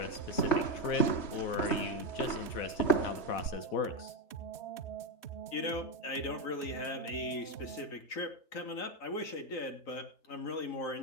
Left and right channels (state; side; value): late; right; 3.3 ms